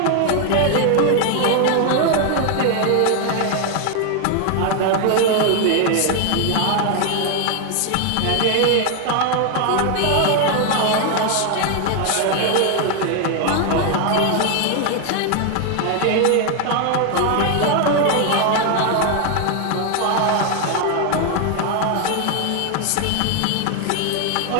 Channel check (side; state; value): both; different; correlation 0.01